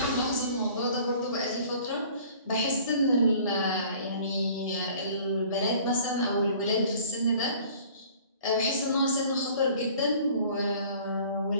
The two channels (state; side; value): inverted; both; correlation -0.50